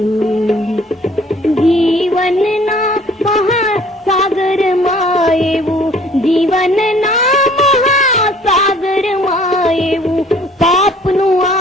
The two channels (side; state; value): both; normal; correlation 0.55